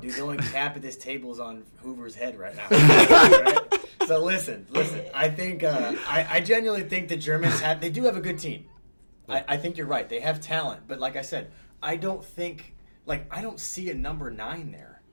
the only cap at this table is on Hoover's head right now. Right? So listen. I think I genuinely think the Germans they do have a good team. I think you're right. They have talent, but like I said, I don't see a number 9 there.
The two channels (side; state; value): both; inverted; correlation -1.00